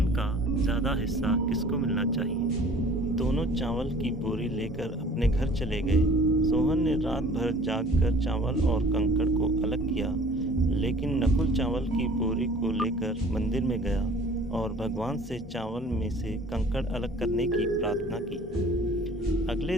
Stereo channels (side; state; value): both; normal; correlation 0.49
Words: का ज़्यादा हिस्सा किसको मिलना चाहिए। दोनों चावल की बोरी लेकर अपने घर चले गए। सोहन ने रात भर जागकर चावल और कंकड़ को अलग किया, लेकिन नकुल चावल की बोरी को लेकर मंदिर में गया और भगवान से चावल में से कंकड़ अलग करने की प्रार्थना की। अगले